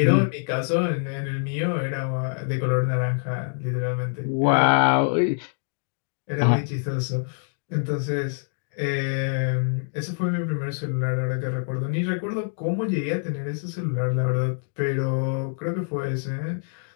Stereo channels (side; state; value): right; silent; digital silence